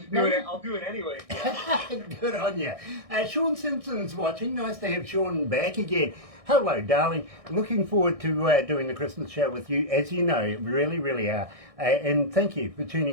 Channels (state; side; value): late; left; 1.6 ms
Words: I'll do it anyway. Good on you. Sean Simpson's watching. Nice to have Sean back again. Hello, darling. Looking forward to doing the Christmas show with you, as you know, really, really are. And thank you for